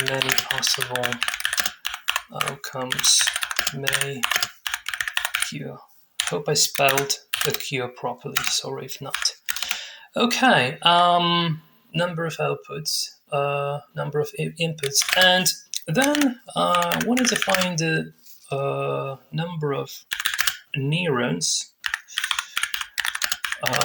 many possible outcomes may occur. Hope I spelled occur properly, sorry if not. Okay, number of outputs, number of inputs, and then I wanted to find the number of neurons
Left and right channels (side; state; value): both; identical; correlation 1.00